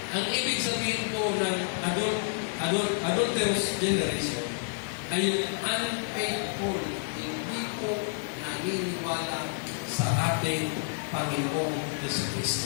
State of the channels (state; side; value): silent; right; 58 dB below the other